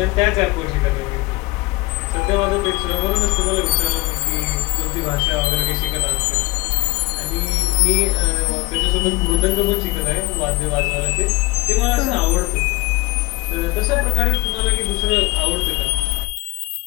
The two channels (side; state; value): right; quieter; 23.0 dB